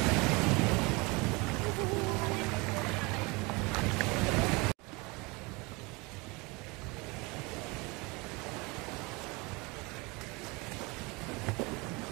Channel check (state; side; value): quieter; left; 26.4 dB